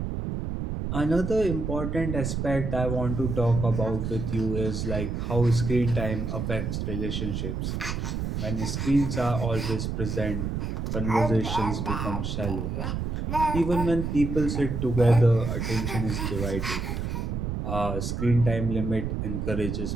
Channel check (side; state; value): right; noise; rumble, 2 dB below the sound